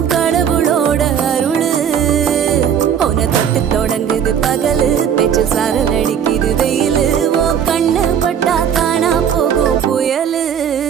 கடவுளோட அருளு உன தொட்டு தொடங்குது பகலு பேச்சில் சாரல் அடிக்குது வெயிலு ஓ கண்ணு பட்டா காணா போகும் புயலு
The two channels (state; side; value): quieter; left; 8.4 dB